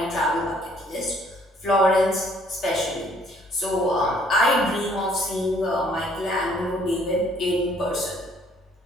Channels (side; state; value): both; normal; correlation 0.62